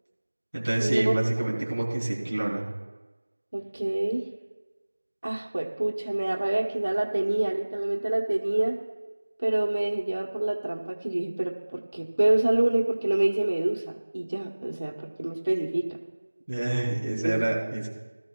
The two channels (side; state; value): both; inverted; correlation -1.00